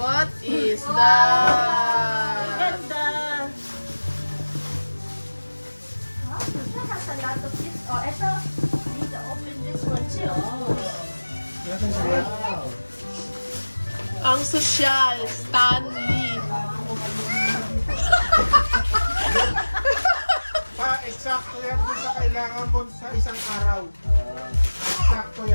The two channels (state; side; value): inverted; both; correlation -1.00